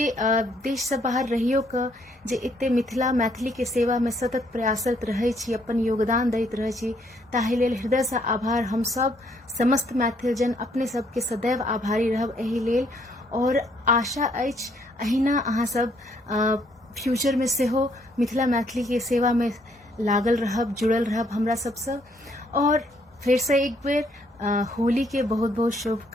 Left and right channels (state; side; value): normal; both; correlation 0.69